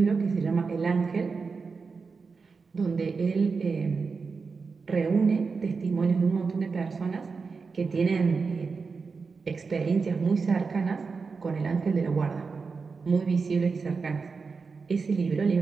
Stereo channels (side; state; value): left; quieter; 4.8 dB